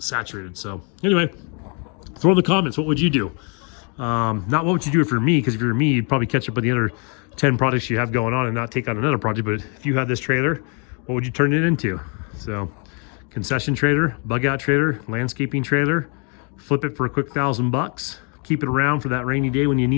So anyway, throw in the comments, what would you do? Not what would you do for me, because if you're me, you'd probably catch up with the other 10 projects you have going on and not take on another project. But if you had this trailer, what would you turn it into? So concession trailer, bug out trailer, landscaping trailer, flip it for a quick $1,000. Keep it around for that rainy day when you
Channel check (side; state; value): right; quieter; 36.7 dB